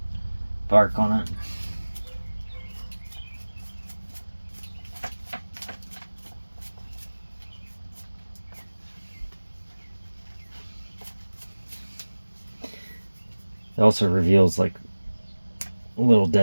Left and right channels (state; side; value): inverted; both; correlation -1.00